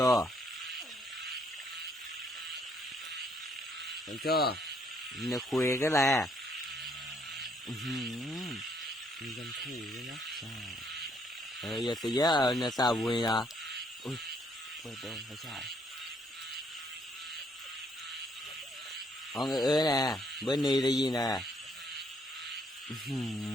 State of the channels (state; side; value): normal; both; correlation 0.68